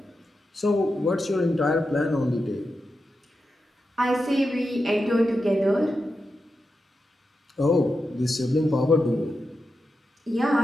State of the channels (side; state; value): both; normal; correlation 0.89